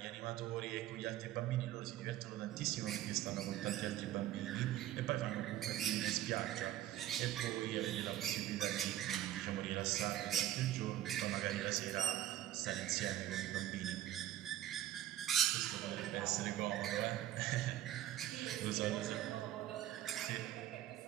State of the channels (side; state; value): left; quieter; 13.0 dB